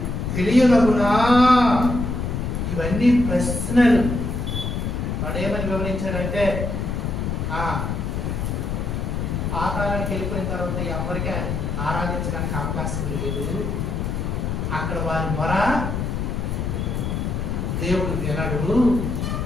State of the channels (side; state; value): left; noise; rumble, 2 dB below the sound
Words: తెలియనగునా. ఇవన్నీ ప్రశ్నలు. వాడేమని వివరించాడంటే పాతాళానికి వెళ్ళిపోయిన తర్వాత ఎవరికి ఆరాధించడానికి అవకాశం లేదు. అక్కడ వారి మొర దేవుడు వినడు.